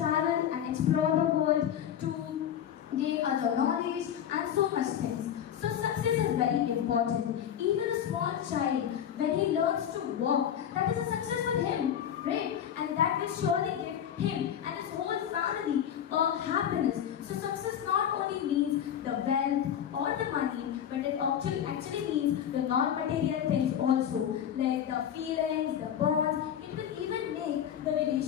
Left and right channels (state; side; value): quieter; right; 9.5 dB